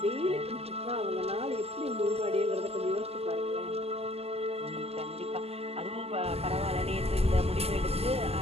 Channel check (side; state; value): left; late; 0.29 ms